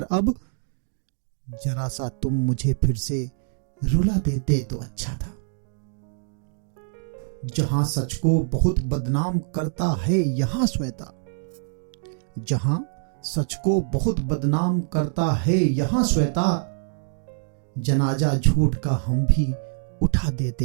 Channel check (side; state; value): left; silent; 62 dB below the other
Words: अब, जरा सा तुम मुझे फिर से रुला देते तो अच्छा था। जहां सच को बहुत बदनाम करता है यहां श्वेता, जहां सच को बहुत बदनाम करता है यहां श्वेता, जनाजा झूठ का हम भी उठा